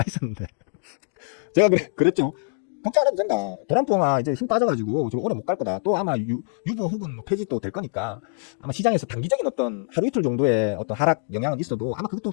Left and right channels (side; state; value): right; silent; digital silence